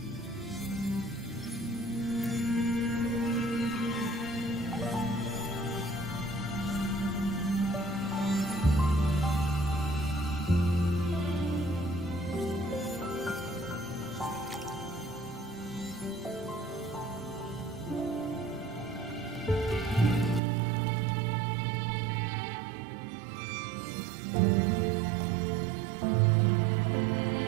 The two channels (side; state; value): left; drops out; at 20.4 s